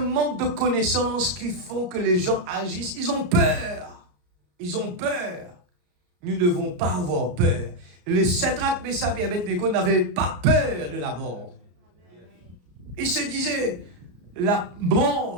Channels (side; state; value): left; late; 34 ms